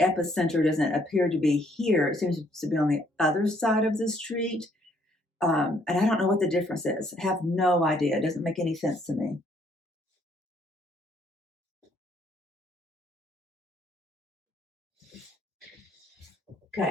doesn't appear to be here. It seems to be on the other side of the street. And I don't know what the difference is. I have no idea. It doesn't make any sense to me.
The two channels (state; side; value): normal; both; correlation 0.67